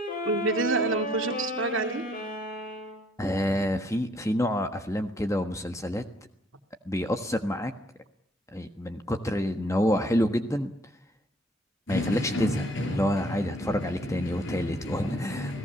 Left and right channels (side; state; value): both; normal; correlation 0.64